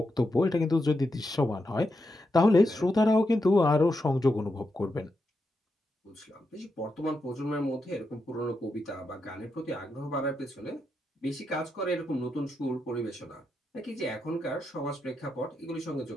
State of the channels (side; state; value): both; normal; correlation 0.85